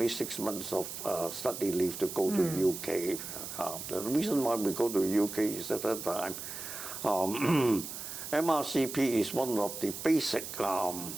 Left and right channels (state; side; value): noise; right; hiss, 8 dB below the sound